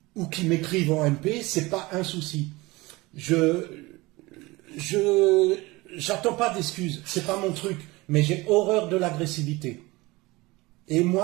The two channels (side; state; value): left; quieter; 21.9 dB